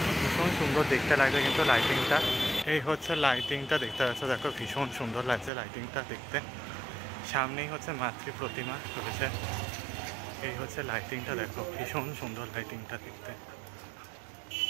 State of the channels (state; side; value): drops out; left; at 5.5 s